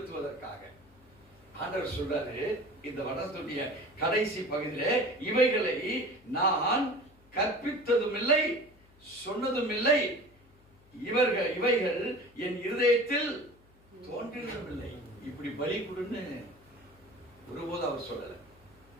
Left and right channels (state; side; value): noise; left; hum, 28 dB below the sound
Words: ஆண்டவர் சொல்றாரு இந்த வடத்துடைய கடைசி பகுதியிலே, இவைகளை நான் கற்பித்ததும் இல்லை, சொன்னதும் இல்லை. இவைகள் என் இருதயத்தில் தோன்றினதும் இல்லை. இப்படி பலி கொடுன்னு ஒருபோது அவர் சொல்லல.